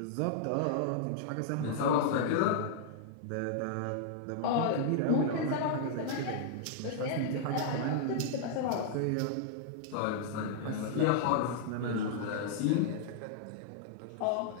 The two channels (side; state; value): both; different; correlation -0.01